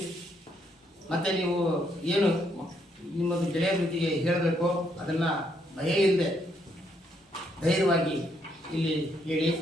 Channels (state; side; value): normal; both; correlation 0.74